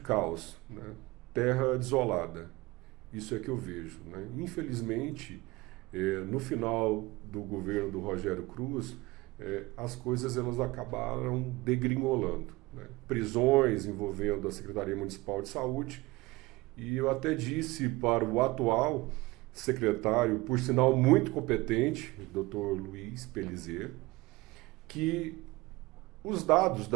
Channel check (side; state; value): left; quieter; 21.4 dB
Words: né? Terra desolada. Isso é que eu vejo, né? Infelizmente, no final do governo do Rogério Cruz, as coisas elas acabaram degringolando, né? Prisões envolvendo a Secretaria Municipal de Saúde, e eu até disse para o atual secretário, por sinal muito competente, o Dr. Luiz Pelizer, que os dados